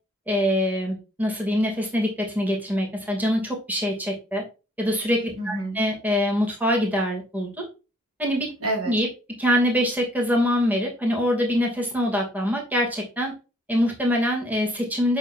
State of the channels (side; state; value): both; normal; correlation 0.62